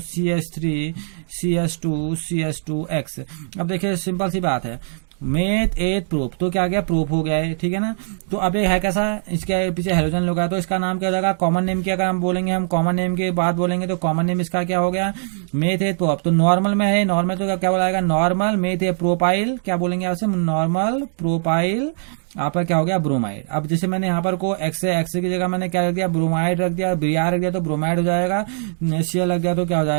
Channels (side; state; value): left; silent; digital silence